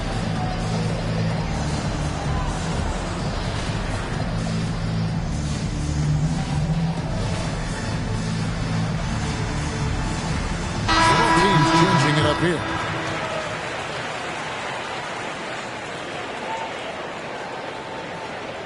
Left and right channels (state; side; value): identical; both; correlation 1.00